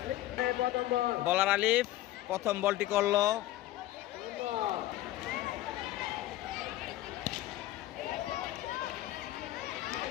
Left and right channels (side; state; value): right; quieter; 15.3 dB